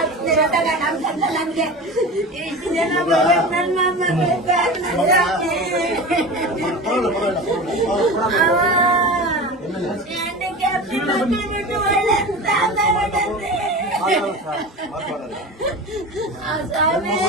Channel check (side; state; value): both; normal; correlation 0.30